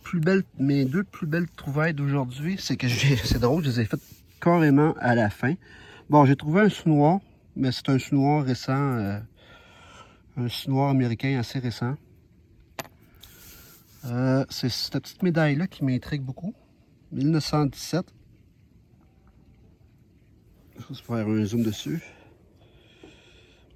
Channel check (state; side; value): identical; both; correlation 1.00